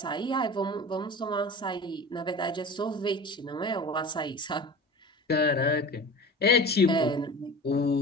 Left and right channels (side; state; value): both; normal; correlation 0.36